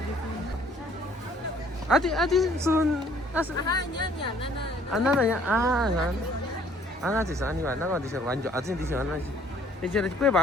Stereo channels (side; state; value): both; normal; correlation 0.60